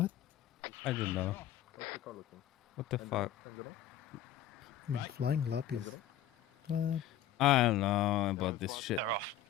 I don't know. What the fuck? I mean, flying lap is. I don't know about this shit. They're off.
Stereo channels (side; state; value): right; quieter; 10.4 dB